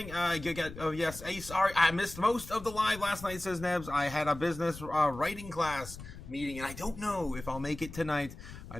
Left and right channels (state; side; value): noise; left; rumble, 14 dB below the sound